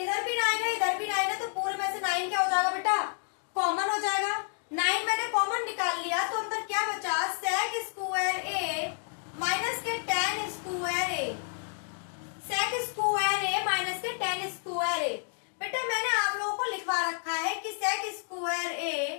भी 9 है इधर भी 9 है, तो पूरे में से 9 क्या हो जाएगा बेटा, कॉमन हो जाएगा। 9 मैंने कॉमन निकाल लिया तो अंदर क्या बचा, sec स्क्वायर ए माइनस के tan square A, sec square A minus के tan स्क्वायर ए। बेटा मैंने आप लोगों को लिखवा रखा है कि sec square A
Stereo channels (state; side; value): silent; right; 58 dB below the other